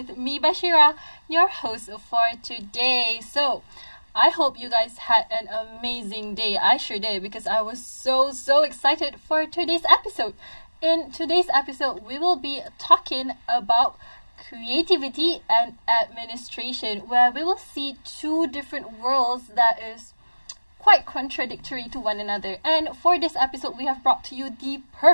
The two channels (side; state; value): both; inverted; correlation -1.00